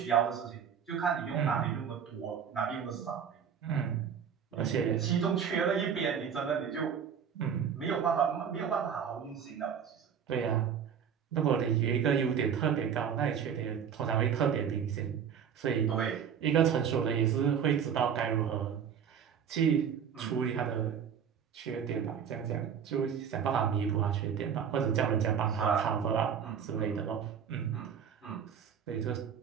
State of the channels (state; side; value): quieter; left; 7.8 dB